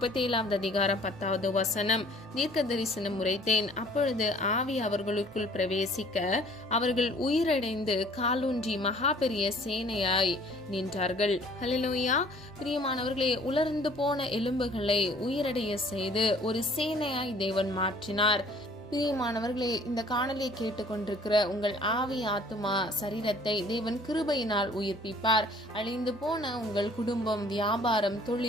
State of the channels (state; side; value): normal; both; correlation 0.55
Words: அதிகாரம் 10வது வசனம், தீர்க்க தரிசனம் உரைத்தேன், அப்பொழுது ஆவி அவர்களுக்குள் பிரவேசிக்க அவர்கள் உயிரடைந்து காலூன்றி மகா பெரிய சேனையாய் நின்றார்கள். ஹல்லேலூயா. பிரியமானவர்களே, உலர்ந்து போன எலும்புகளை உயிரடைய செய்து ஒரு சேனையாய் தேவன் மாற்றினார். பிரியமானவர்களே, இந்த காணொலியை கேட்டுக்கொண்டிருக்கிற உங்கள் ஆவி, ஆத்துமா, சரீரத்தை தேவன் கிருபையினால் உயிர்ப்பிப்பார். அழிந்து போன உங்கள் குடும்பம், வியாபாரம்,